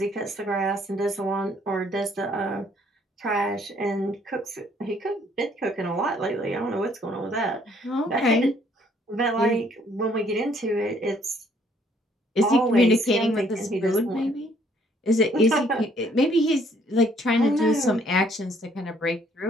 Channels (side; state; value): both; normal; correlation 0.64